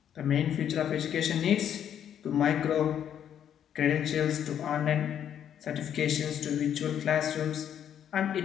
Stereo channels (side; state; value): right; quieter; 9.5 dB